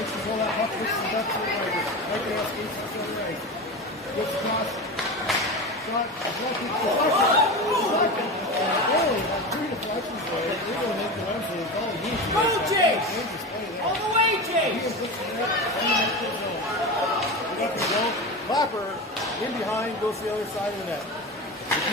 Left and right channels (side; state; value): both; normal; correlation 0.24